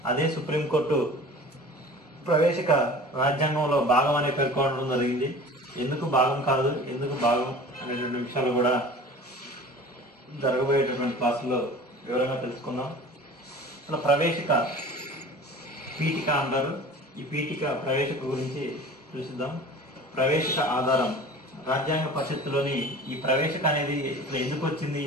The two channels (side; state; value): both; normal; correlation 0.41